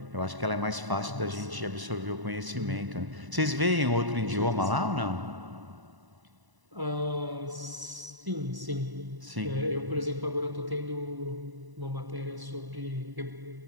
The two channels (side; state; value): left; late; 1.0 ms